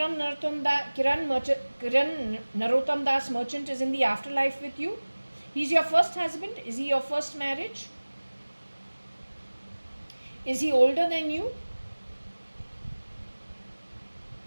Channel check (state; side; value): inverted; both; correlation -1.00